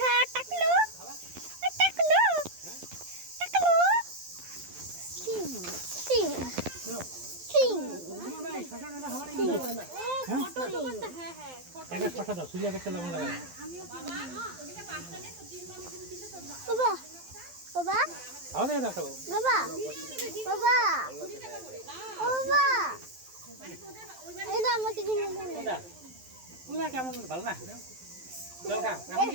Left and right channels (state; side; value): late; left; 12 ms